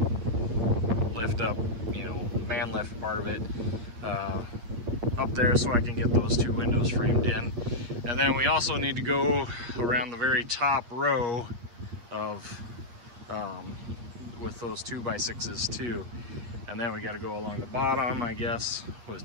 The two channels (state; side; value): late; left; 8.5 ms